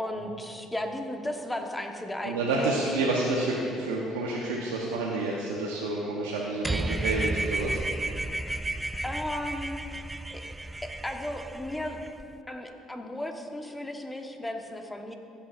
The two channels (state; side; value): normal; both; correlation 0.61